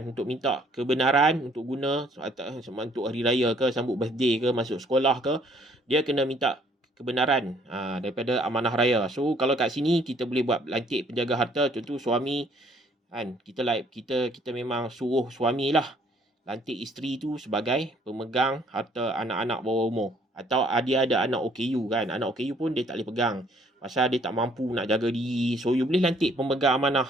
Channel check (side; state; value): both; normal; correlation 0.62